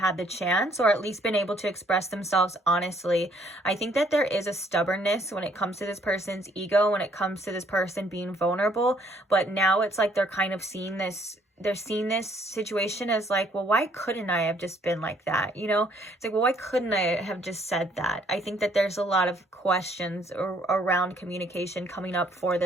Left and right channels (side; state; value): both; normal; correlation 0.64